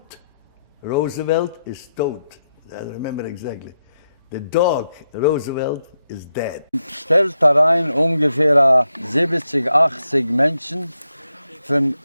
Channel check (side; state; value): both; inverted; correlation -0.84